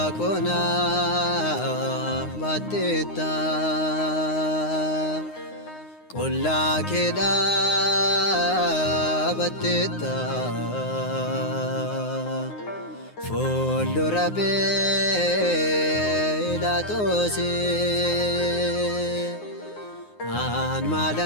ባቴታ ቆላ ኬዳ ባቴታ ፉልዱረ ጲላጦስ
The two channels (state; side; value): late; right; 9.6 ms